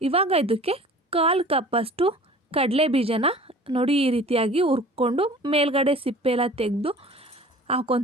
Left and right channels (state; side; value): normal; both; correlation 0.45